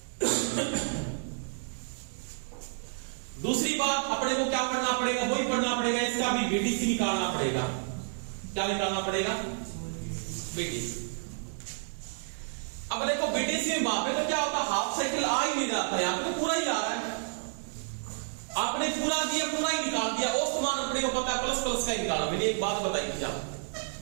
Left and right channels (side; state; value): left; silent; digital silence